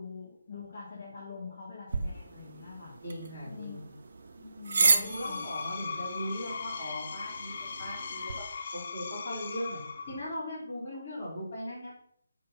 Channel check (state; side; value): inverted; both; correlation -0.87